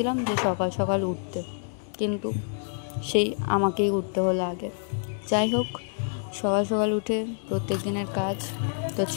যে সকাল সকাল উঠতে, কিন্তু সেই আমাকেই উঠতে হলো আগে। যাই হোক, সকাল সকাল উঠে প্রত্যেক দিনের কাজ। তো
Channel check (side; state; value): right; silent; digital silence